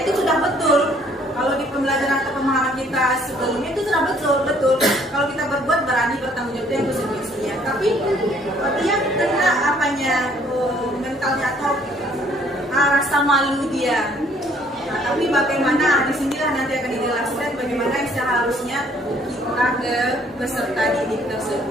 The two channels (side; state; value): both; normal; correlation 0.62